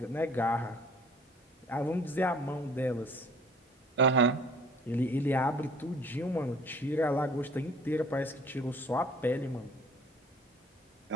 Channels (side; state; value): both; normal; correlation 0.52